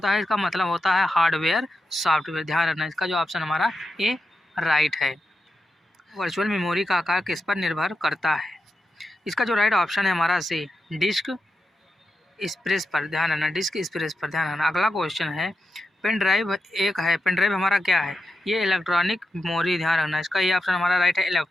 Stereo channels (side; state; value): both; normal; correlation 0.87